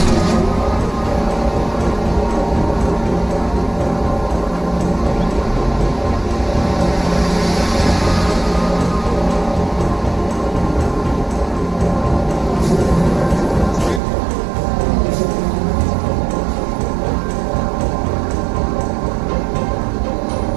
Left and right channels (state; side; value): drops out; left; at 14.0 s